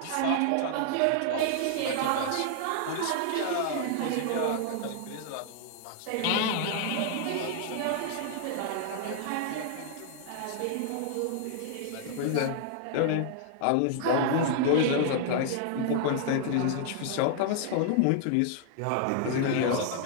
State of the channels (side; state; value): both; different; correlation -0.01